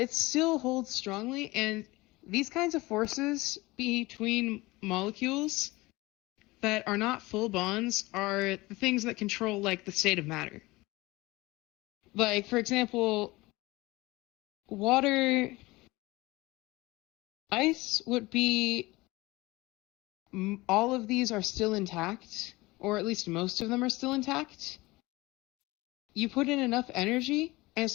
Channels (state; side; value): quieter; right; 21.2 dB